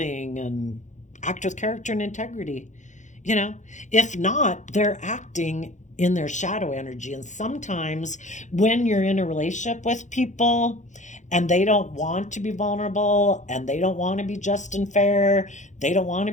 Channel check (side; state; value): right; late; 0.35 ms